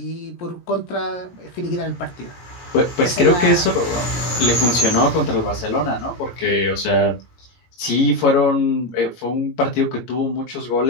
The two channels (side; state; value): right; late; 17 ms